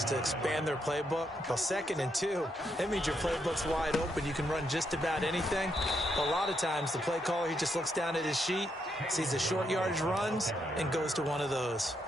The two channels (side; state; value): both; normal; correlation 0.78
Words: to expand their playbook. Well, 2nd and 2, that means your playbook's wide open. You can run just about anything. A lot of times, the play caller, he just looks down at his sheet, sees the short yardage runs, and goes to one of those.